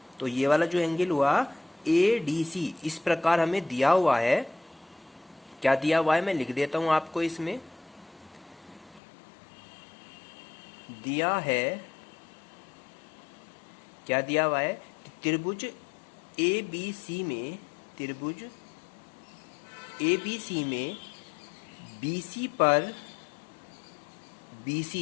तो ये वाला जो एंगल हुआ ADC इस प्रकार हमें दिया हुआ है। क्या दिया हुआ है मैं लिख देता हूं आपको। इसमें दिया है, क्या दिया हुआ है, त्रिभुज ABC में, त्रिभुज ABC में BC पर,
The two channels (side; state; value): right; drops out; at 9.0 s